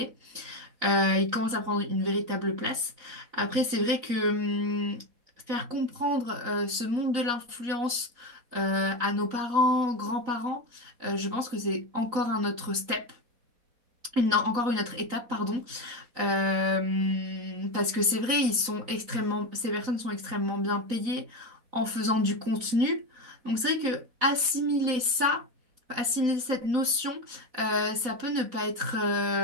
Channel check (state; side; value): late; left; 3.9 ms